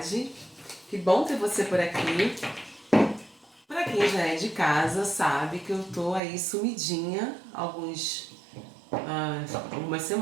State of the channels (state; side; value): drops out; left; at 6.2 s